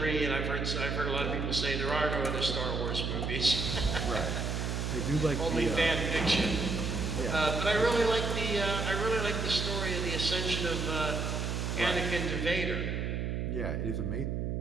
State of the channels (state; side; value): noise; right; hum, 1 dB below the sound